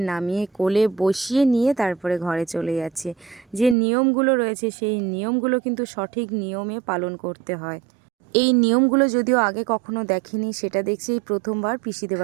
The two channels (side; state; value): left; drops out; at 3.8 s